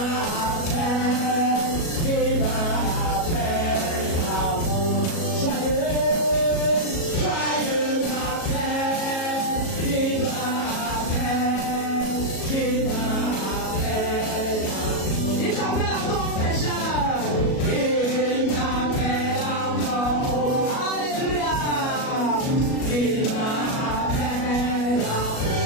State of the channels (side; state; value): right; late; 37 ms